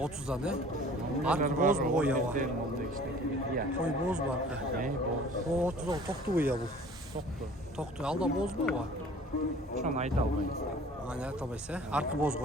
ne? Artık boz mu koy ya var? Koy boz var. O 30'da toktu koy ya bu. Toktu. Alda boz mu var? Şu an ayda albayız. Aynen tabaysa. Artık boz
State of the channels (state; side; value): normal; both; correlation 0.49